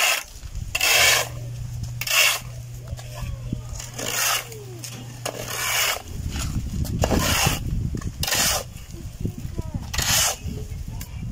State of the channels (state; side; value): identical; both; correlation 1.00